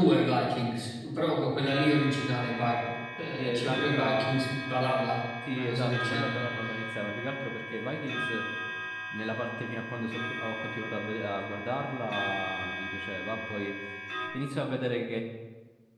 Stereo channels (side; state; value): both; identical; correlation 1.00